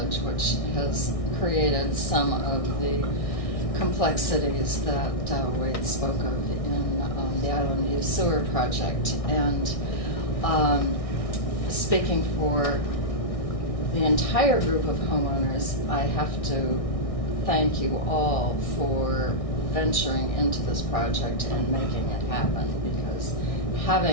which has created some of the complexities that Wade spoke of in the Island View Sewer Project. And speaking for the entire group of homeowners, I have to thank you all for venturing into this project and making it happen, because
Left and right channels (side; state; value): right; late; 1.6 ms